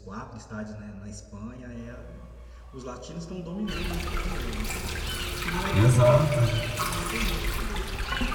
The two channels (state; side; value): identical; both; correlation 1.00